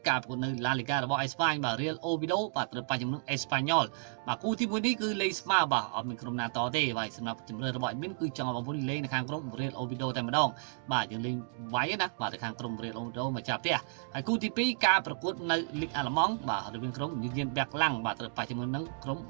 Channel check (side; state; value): left; silent; digital silence